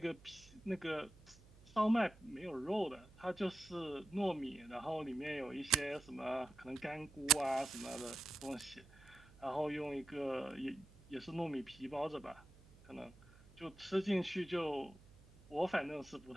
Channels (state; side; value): noise; right; hum, 23 dB below the sound